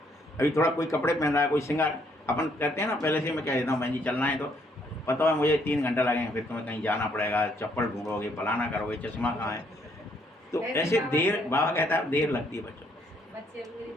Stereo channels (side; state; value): both; normal; correlation 0.69